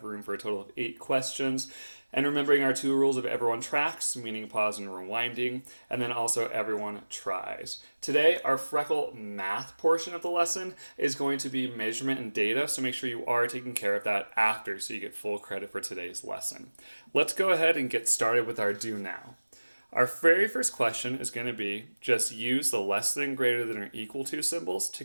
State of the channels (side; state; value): both; inverted; correlation -1.00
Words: room for a total of 8 questions. And remembering our 2 rules of everyone tracks, meaning pause and rewinding, and then also everyone tries. Today, our freckle math portion of the lesson is going to be measurement and data, so make sure you are taking care of that after so you get full credit for today's lesson. Let's go ahead and get started with our do now. Our very first question is going to be just use the less than, greater than, or equal to symbols to